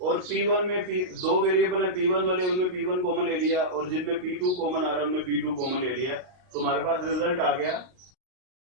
P1 में दो वेरिएबल है, P1 वाले, उनमें P1 कॉमन ले लिया, और जिनमें P2 कॉमन आ रहा है उनमें P2 कॉमन ले लिया। तो हमारे पास रिजल्ट आ गया,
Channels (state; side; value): late; left; 39 ms